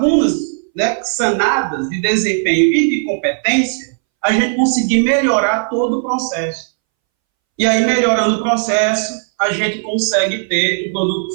né, sanadas de desempenho e de competência, a gente conseguir melhorar todo o processo. E aí, melhorando o processo, a gente consegue ter um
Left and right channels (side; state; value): left; silent; 66 dB below the other